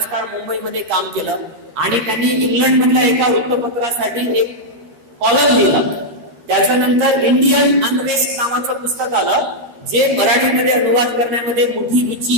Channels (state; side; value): late; left; 13 ms